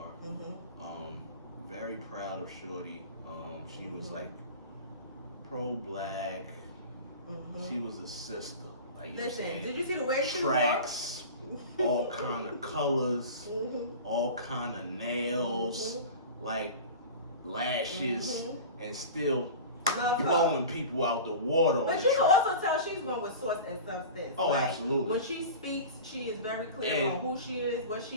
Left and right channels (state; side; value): inverted; both; correlation -0.34